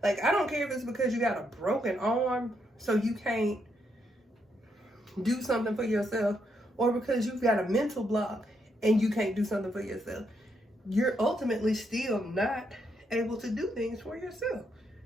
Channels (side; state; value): both; normal; correlation 0.78